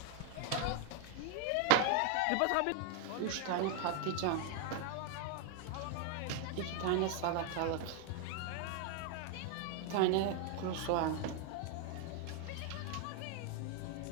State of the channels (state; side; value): different; both; correlation 0.00